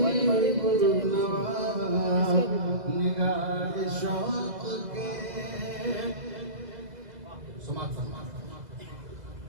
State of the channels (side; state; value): left; late; 2.0 ms